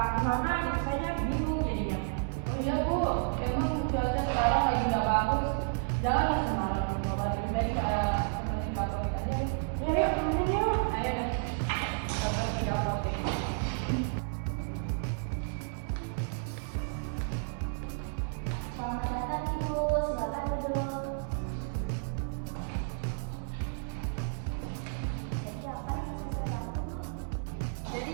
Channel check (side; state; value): left; silent; 57 dB below the other